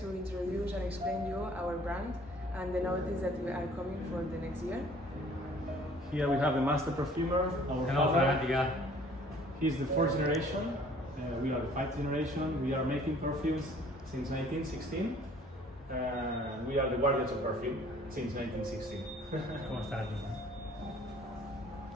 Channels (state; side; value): normal; both; correlation 0.55